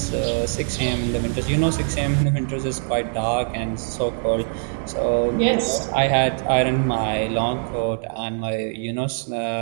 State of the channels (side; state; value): left; silent; 64 dB below the other